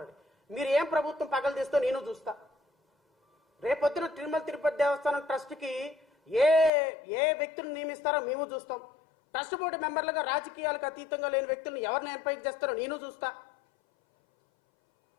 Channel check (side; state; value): right; drops out; at 6.7 s